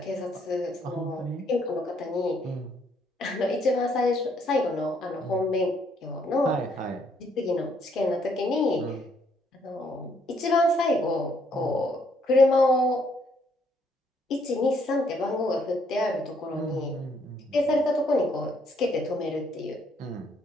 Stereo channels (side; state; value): both; normal; correlation 0.69